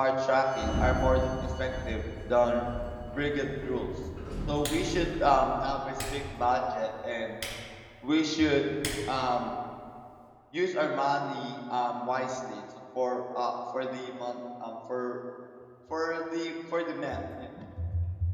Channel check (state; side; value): identical; both; correlation 1.00